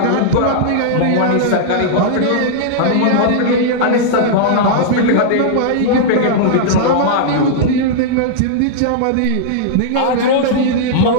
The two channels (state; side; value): different; both; correlation -0.02